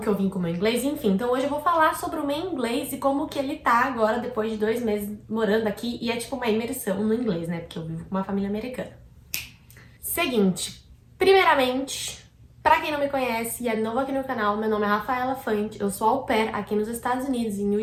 que eu vim com o meu inglês, enfim. Então hoje eu vou falar sobre o meu inglês e como que ele tá agora depois de 2 meses morando aqui. E é tipo uma imersão no inglês, né, porque eu vivo com uma família americana. Seguinte, primeiramente, pra quem não me conhece e é novo aqui no canal, meu nome é Rafaela Fante, eu sou au pair aqui nos Estados Unidos, em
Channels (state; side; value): identical; both; correlation 1.00